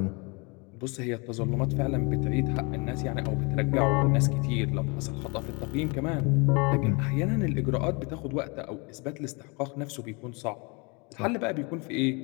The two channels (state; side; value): quieter; right; 30.0 dB